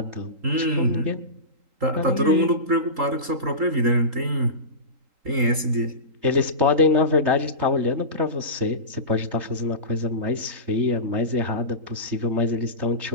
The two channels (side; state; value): left; late; 3.8 ms